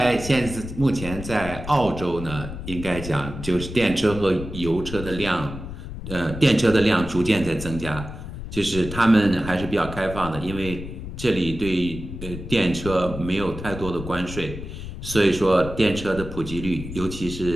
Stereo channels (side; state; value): left; noise; rumble, 9 dB below the sound